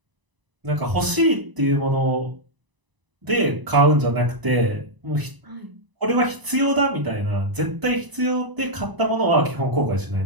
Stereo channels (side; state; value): left; late; 1.0 ms